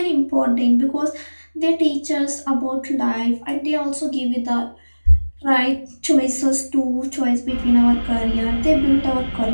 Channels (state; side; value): inverted; both; correlation -1.00